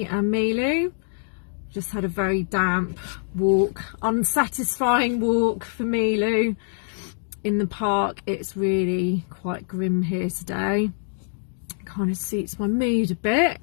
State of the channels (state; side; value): silent; right; digital silence